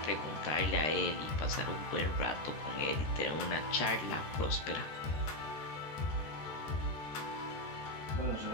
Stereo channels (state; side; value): late; right; 13 ms